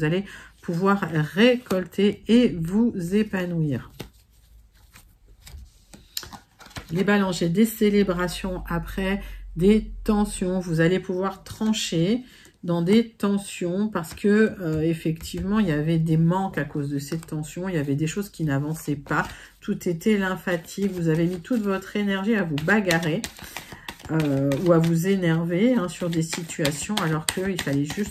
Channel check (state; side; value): identical; both; correlation 1.00